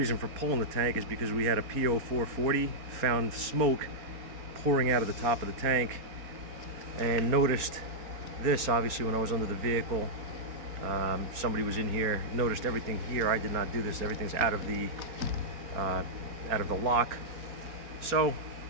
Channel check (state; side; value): late; left; 4.3 ms